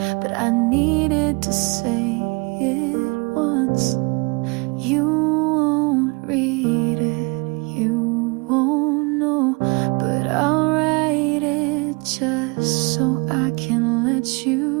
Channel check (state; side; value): quieter; left; 29.8 dB